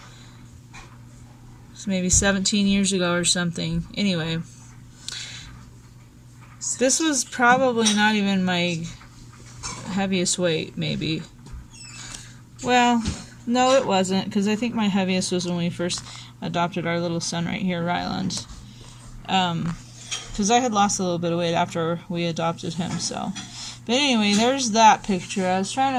maybe 17 years ago or something. Anyway, this was probably not even my heaviest weight, maybe. Well, no, it wasn't, because I think my heaviest was when we first adopted our little son right here, Ryland. Because I had lost a little bit of weight after we adopted him, so. But anyway, there's that picture. I was trying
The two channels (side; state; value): both; identical; correlation 1.00